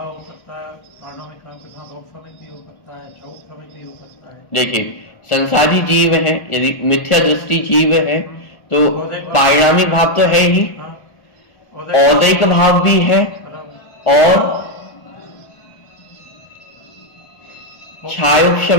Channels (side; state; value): right; late; 1.4 ms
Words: हो सकता है, पारिणामिक भाव के साथ औपसमिक भी हो सकता है, चौपसमिक भी हो सकता है। देखिए, संसारी जीव है, यदि मिथ्या दृष्टि जीव है तो पारिणामिक भाव तो है ही, औदैक भाव भी है और